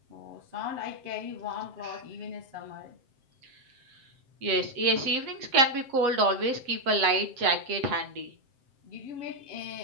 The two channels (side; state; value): left; late; 7.7 ms